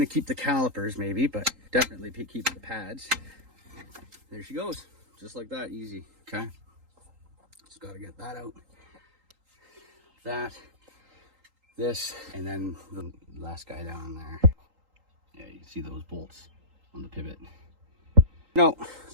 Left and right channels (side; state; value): left; late; 3.8 ms